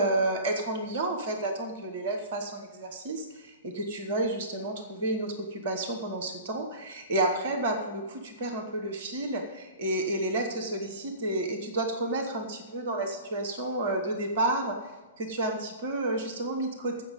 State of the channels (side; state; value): both; inverted; correlation -0.38